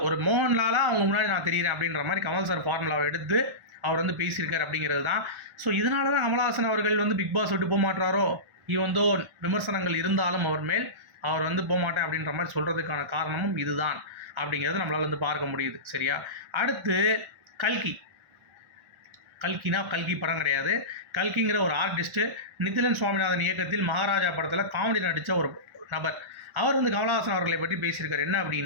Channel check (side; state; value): left; late; 1.4 ms